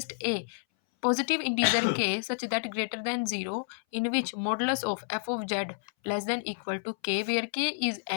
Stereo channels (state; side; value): silent; right; 58 dB below the other